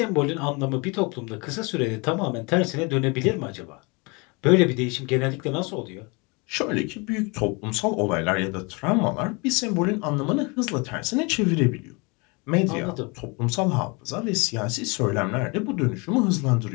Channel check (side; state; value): right; quieter; 29.3 dB